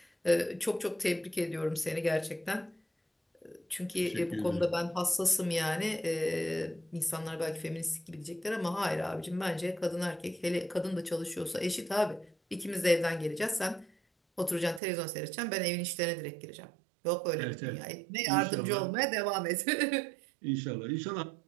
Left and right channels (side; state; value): left; drops out; at 14.8 s